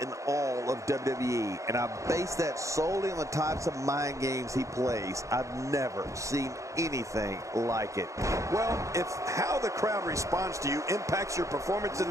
all of WWE, and I base that solely on the types of mind games he plays. I've never seen anything like it. Well, if how the crowd responds to you impacts your performance in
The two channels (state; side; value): late; left; 0.15 ms